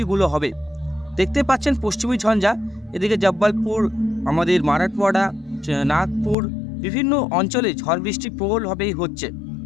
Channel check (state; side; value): drops out; right; at 6.4 s